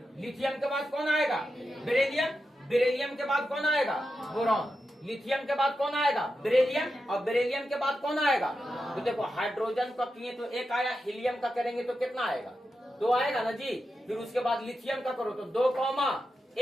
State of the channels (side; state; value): both; normal; correlation 0.89